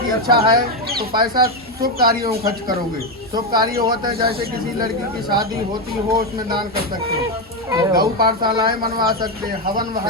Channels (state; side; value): normal; both; correlation 0.08